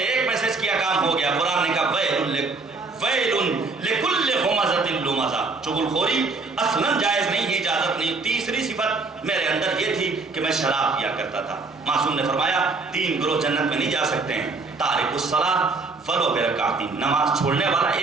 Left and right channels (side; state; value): left; quieter; 3.8 dB